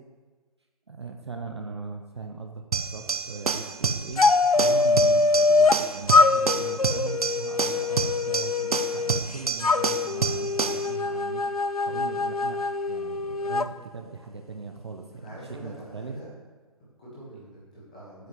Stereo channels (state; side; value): normal; both; correlation 0.42